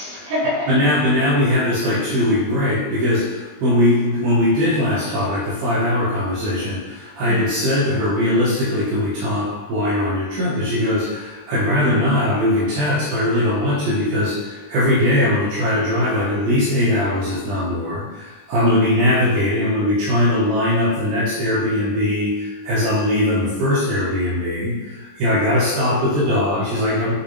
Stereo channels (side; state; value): left; late; 20 ms